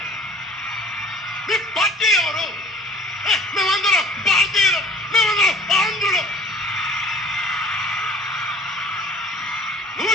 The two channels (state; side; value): normal; both; correlation 0.47